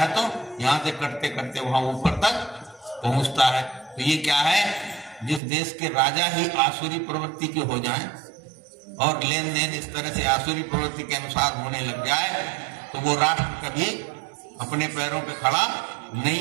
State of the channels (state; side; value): drops out; left; at 5.4 s